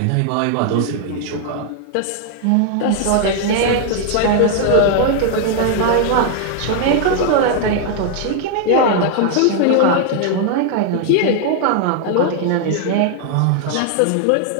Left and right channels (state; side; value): different; both; correlation 0.00